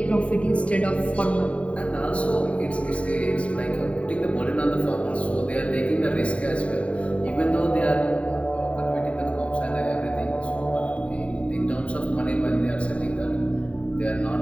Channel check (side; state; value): right; late; 0.064 ms